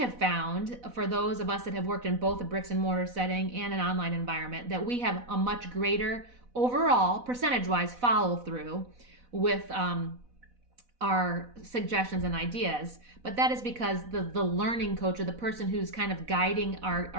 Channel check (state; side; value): late; left; 4.0 ms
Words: found, for those of us that have worked in both a bricks and mortar setting and an online environment, that we have a much greater overall percentage-wise follow through with our suggestions and ideas. But that is because the learning coach or the person who's kind of guiding